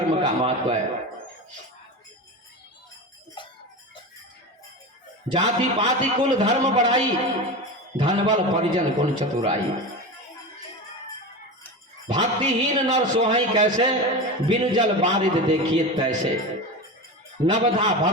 का महत्व है। जाति पाति कुल धर्म बढ़ाई, धनबल परिजन गुण चतुराई। भक्तिहीन नर सोहई कैसे, बिनु जल बारिद देखिए तैसे। नवधा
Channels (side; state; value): both; normal; correlation 0.25